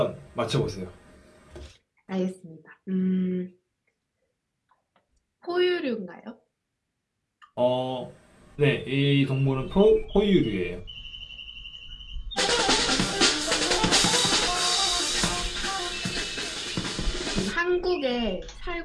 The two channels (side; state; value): both; identical; correlation 1.00